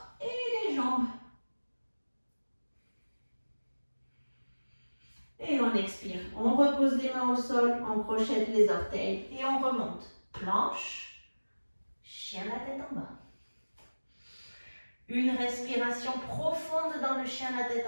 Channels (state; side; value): inverted; both; correlation -1.00